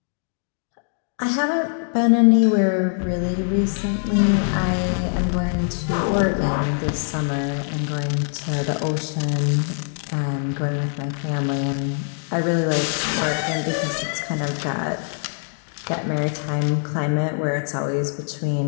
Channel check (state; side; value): silent; right; 63 dB below the other